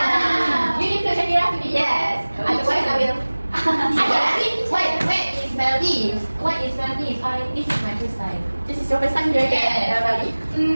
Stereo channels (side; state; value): both; inverted; correlation -1.00